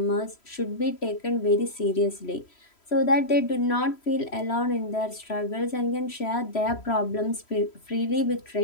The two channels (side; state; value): right; late; 3.1 ms